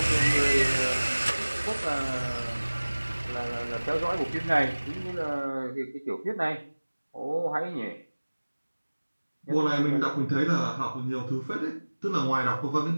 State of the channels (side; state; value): both; inverted; correlation -1.00